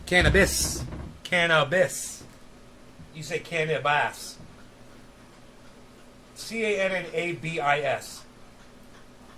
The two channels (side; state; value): both; identical; correlation 1.00